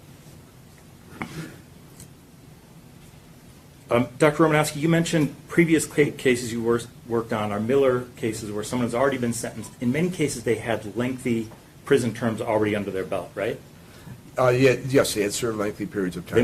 Dr. Romanowski, you mentioned previous cases you worked on are Miller cases where someone has already been sentenced. In many cases, they had lengthy prison terms already under their belt, right? Yes, they had served lengthy periods of time. They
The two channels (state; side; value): identical; both; correlation 1.00